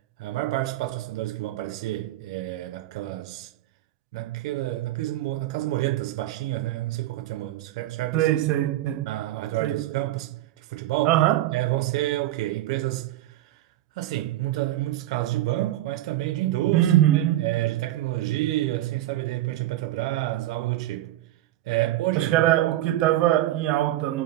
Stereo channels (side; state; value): left; quieter; 14.7 dB